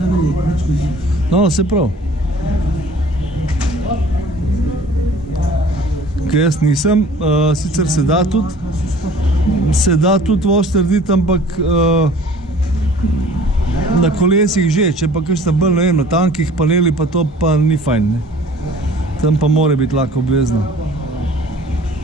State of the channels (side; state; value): both; normal; correlation 0.48